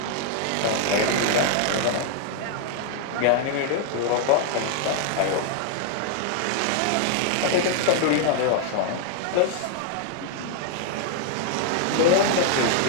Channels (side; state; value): both; different; correlation -0.01